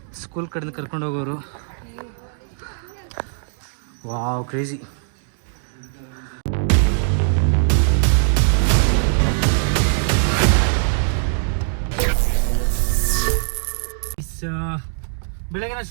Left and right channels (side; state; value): left; silent; digital silence